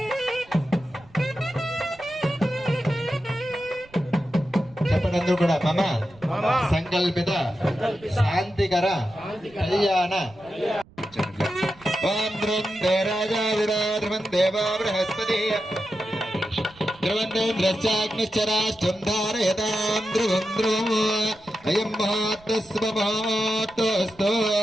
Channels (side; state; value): right; noise; rumble, 26 dB below the sound